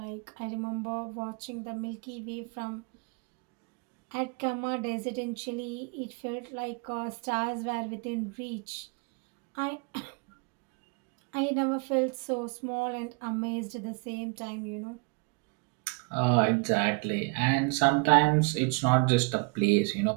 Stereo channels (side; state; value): left; quieter; 32.5 dB